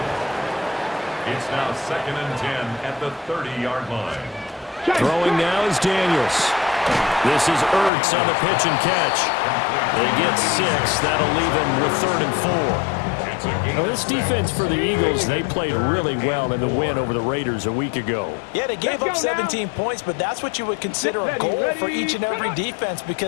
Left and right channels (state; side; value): drops out; right; at 7.9 s